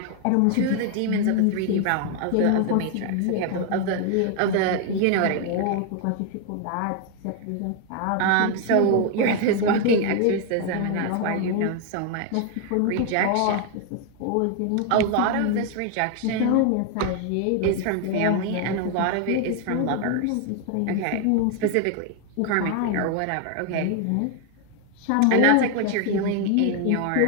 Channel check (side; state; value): both; different; correlation 0.01